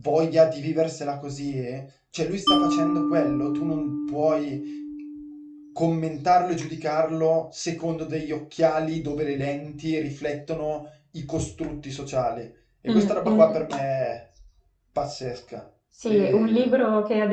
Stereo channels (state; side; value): identical; both; correlation 1.00